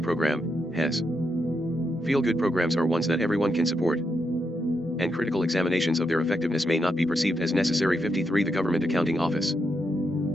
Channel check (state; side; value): normal; both; correlation 0.82